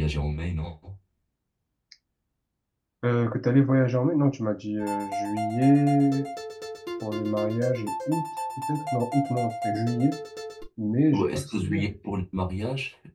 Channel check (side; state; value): both; identical; correlation 1.00